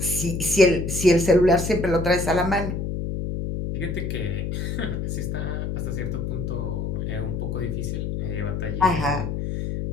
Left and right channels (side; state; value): left; noise; hum, 3 dB below the sound